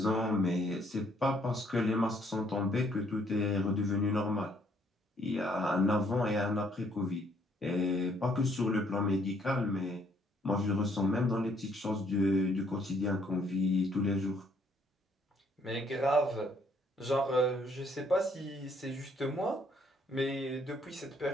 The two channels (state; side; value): normal; both; correlation 0.67